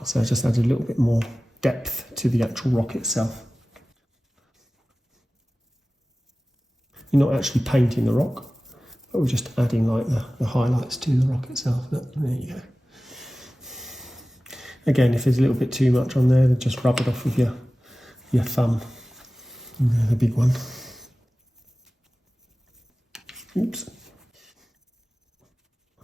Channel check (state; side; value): normal; both; correlation 0.96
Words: so I just add a little bit more depth to the actual rock itself. You're not actually painting the rock, but we're just adding like the highlights to the rock itself. There you go. Again, if there's a little bit too much on there, then just rub it off with your thumb. And the big one. Oops.